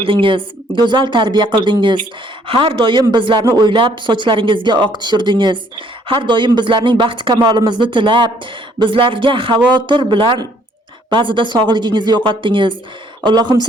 go'zal tarbiya qildingiz. Har doim bizlarni o'ylab sochlaringizga oq tushirdingiz. Har doim bizlarning baxt kamolimizni tilab, bizlarga xavotir bilan ba'zida sog'ligingizni yo'qotdingiz. Allohim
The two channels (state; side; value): normal; both; correlation 0.64